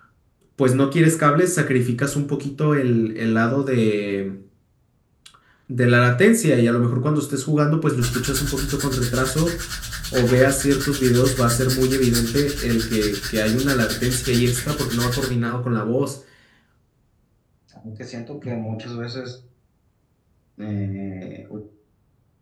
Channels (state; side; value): identical; both; correlation 1.00